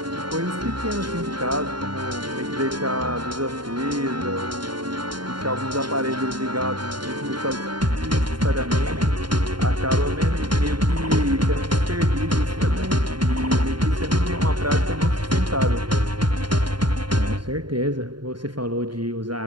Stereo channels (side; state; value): left; late; 0.72 ms